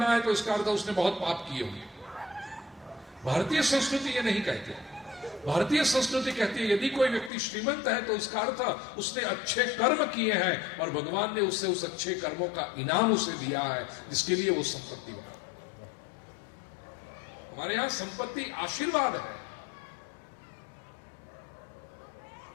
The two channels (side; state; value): right; drops out; at 7.3 s